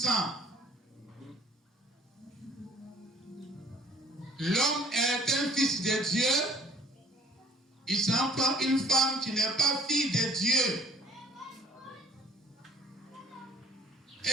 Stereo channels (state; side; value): normal; both; correlation 0.55